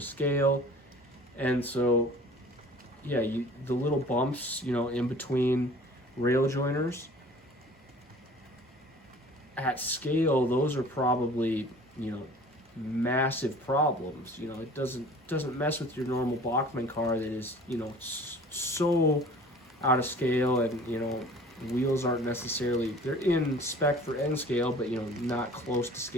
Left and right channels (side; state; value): both; normal; correlation 0.47